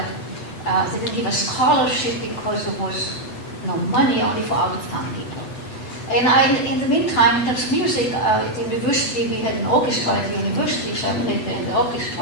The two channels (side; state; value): right; late; 8.0 ms